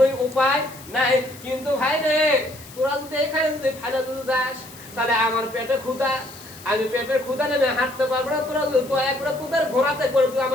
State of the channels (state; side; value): noise; left; hiss, 19 dB below the sound